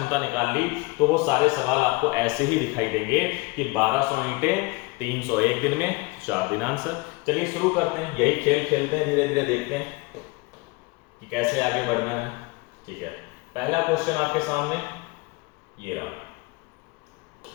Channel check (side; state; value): right; quieter; 25.0 dB